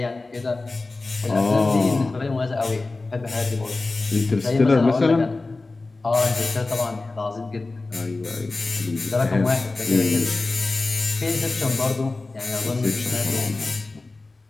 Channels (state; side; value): quieter; right; 3.4 dB